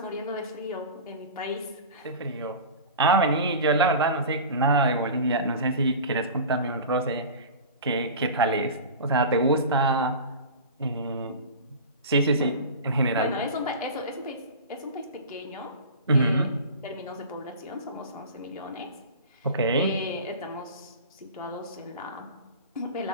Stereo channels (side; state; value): both; inverted; correlation -0.33